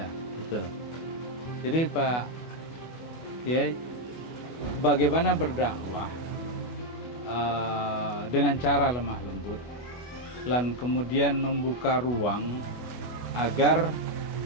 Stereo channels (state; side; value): late; right; 24 ms